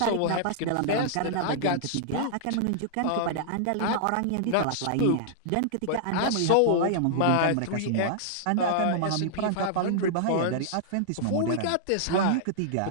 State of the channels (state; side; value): different; both; correlation -0.01